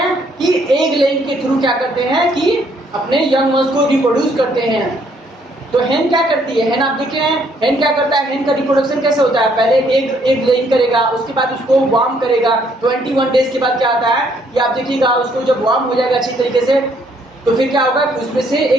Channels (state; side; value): normal; both; correlation 0.67